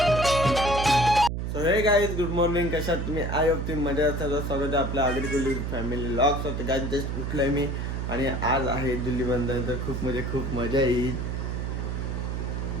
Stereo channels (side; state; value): right; noise; hum, 3 dB below the sound